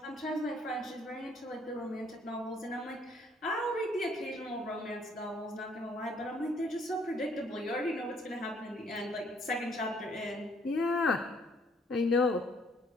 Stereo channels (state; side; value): normal; both; correlation 0.64